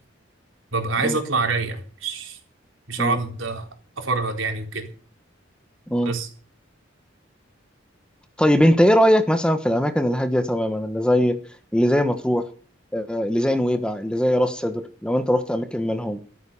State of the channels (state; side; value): normal; both; correlation 0.81